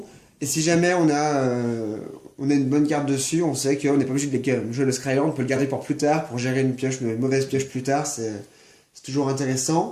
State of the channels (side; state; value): both; identical; correlation 1.00